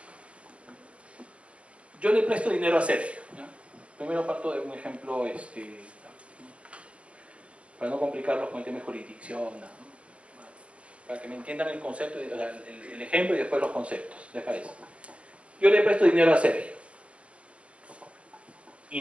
Yo le presto dinero a Sergio, ¿ya? Primero parto de un ejemplo, para no complicarlos con el tema de jurisdicción, ¿no? Para que me entiendan el concepto, el ejemplo y después los conceptos, ¿les parece? Yo le presto dinero a Sergio y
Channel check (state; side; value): late; left; 0.061 ms